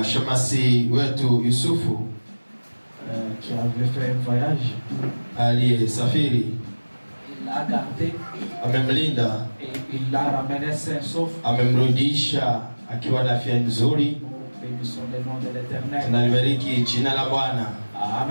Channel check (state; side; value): inverted; both; correlation -1.00